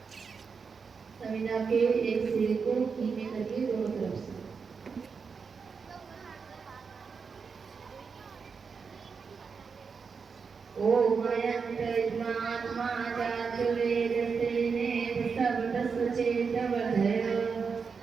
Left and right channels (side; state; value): left; quieter; 5.5 dB